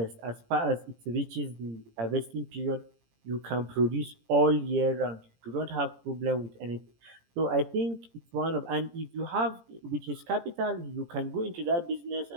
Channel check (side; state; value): left; late; 17 ms